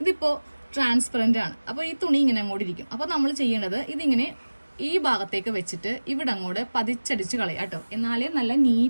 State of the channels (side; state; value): both; inverted; correlation -1.00